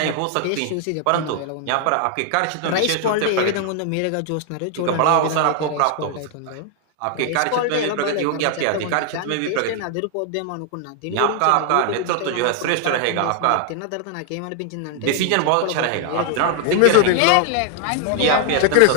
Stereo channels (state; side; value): different; both; correlation 0.00